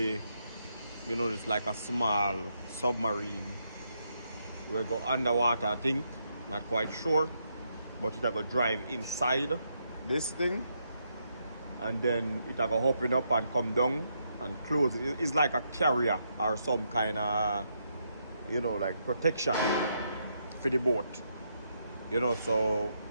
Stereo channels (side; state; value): both; inverted; correlation -0.78